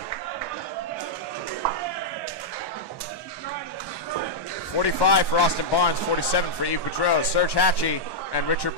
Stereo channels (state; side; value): late; right; 1.1 ms